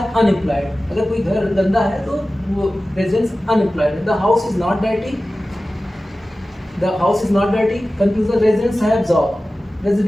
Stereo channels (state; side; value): normal; both; correlation 0.96